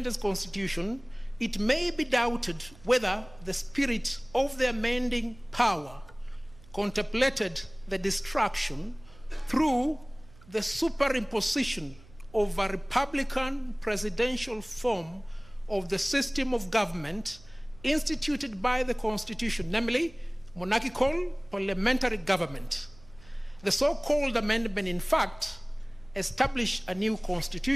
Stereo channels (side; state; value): right; noise; hum, 23 dB below the sound